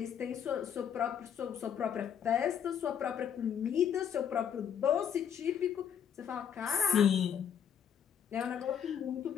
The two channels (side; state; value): right; quieter; 8.4 dB